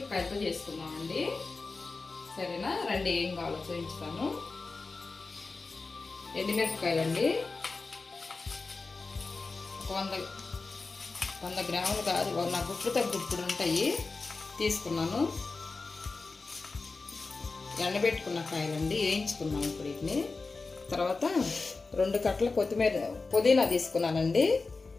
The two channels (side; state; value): right; quieter; 4.0 dB